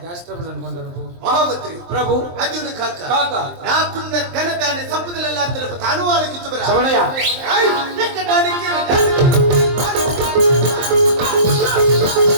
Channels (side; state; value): left; late; 23 ms